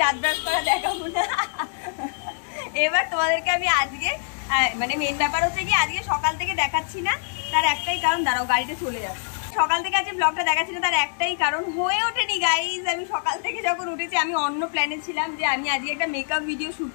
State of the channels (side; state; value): right; silent; digital silence